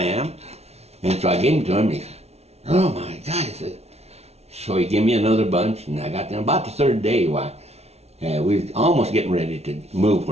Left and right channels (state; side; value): late; left; 0.31 ms